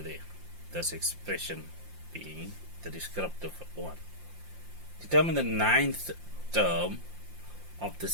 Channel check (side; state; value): left; late; 5.7 ms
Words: there. This expression being the descriptive one. Determine the ninth term of the